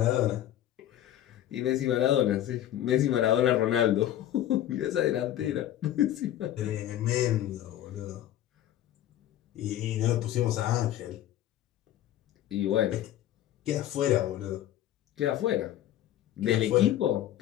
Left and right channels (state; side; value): quieter; right; 12.5 dB